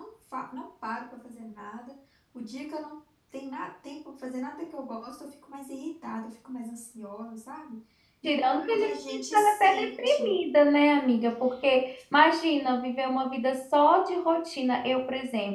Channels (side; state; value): both; identical; correlation 1.00